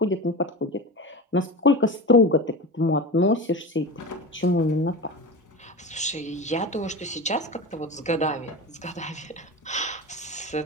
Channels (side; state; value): both; normal; correlation 0.28